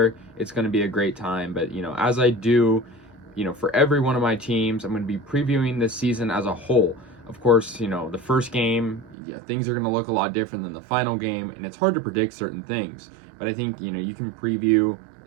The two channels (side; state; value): left; drops out; at 9.2 s